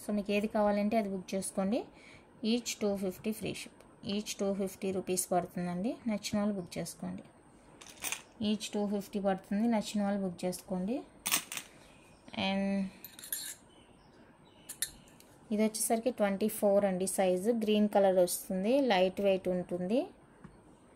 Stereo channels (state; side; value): identical; both; correlation 1.00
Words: సో మీకు ఏది కావాలంటే అది బుక్ చేసుకోండి. Each 250 free ship. Each 250 rupees పడుతుందండి. నచ్చిన వాళ్ళు బుక్ చేసుకోండి. ఈచ్ 250 పడుతుంది, నచ్చిన వాళ్ళు బుక్ చేసుకోండి. అండ్ ఇది వచ్చేసరికి 24 అండి సైజు. గ్రీన్ కలర్ వస్తుంది, లైట్ వెయిట్ ఉంటుంది.